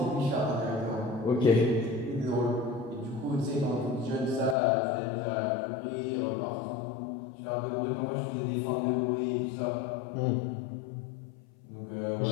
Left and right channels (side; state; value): right; drops out; at 4.5 s